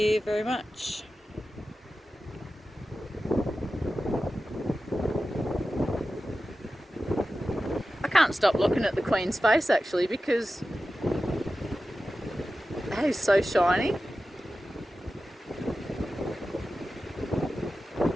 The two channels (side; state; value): both; normal; correlation 0.94